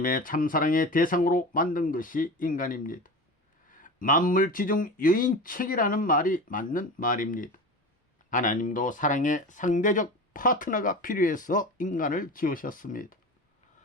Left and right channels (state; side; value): normal; both; correlation 0.30